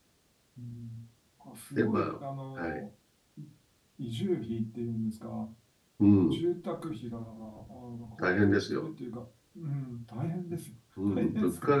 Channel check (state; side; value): identical; both; correlation 1.00